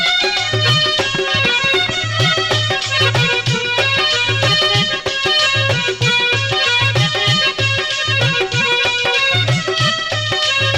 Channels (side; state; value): both; identical; correlation 1.00